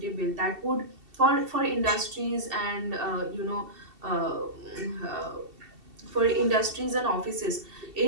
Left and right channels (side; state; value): left; late; 2.7 ms